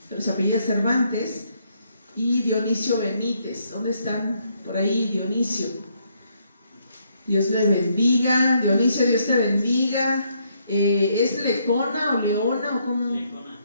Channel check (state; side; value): inverted; both; correlation -0.72